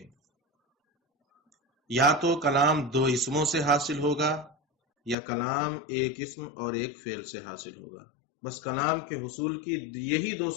یا تو کلام دو اسموں سے حاصل ہوگا یا کلام ایک اسم اور ایک فعل سے حاصل ہوگا، بس کلام کے حصول کی یہی دو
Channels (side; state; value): right; drops out; at 5.2 s